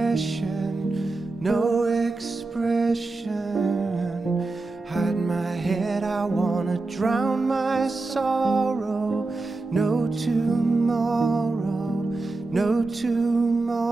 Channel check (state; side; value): quieter; left; 3.4 dB